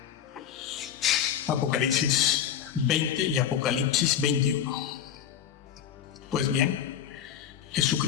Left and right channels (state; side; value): quieter; right; 9.3 dB